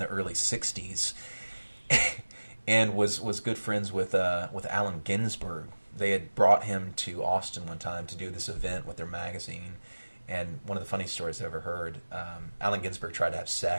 early 60s, and was good friends with Allen Ginsberg. They had brought him to Austin one time to do this event with their magazine, and one of the funniest stories I've ever heard, Allen Ginsberg tried to have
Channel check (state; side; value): inverted; both; correlation -1.00